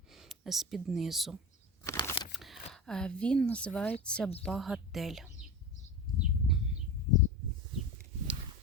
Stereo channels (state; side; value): normal; both; correlation 0.26